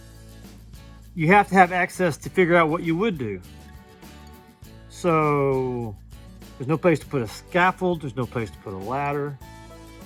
you have to have access to figure out what you would do. So there's no place to put a scaffold, there's no place to put a ladder.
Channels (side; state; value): both; identical; correlation 1.00